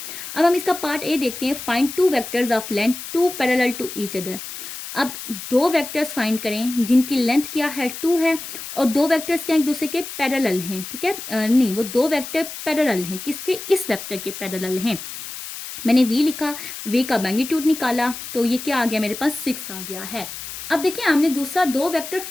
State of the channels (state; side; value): noise; left; hiss, 10 dB below the sound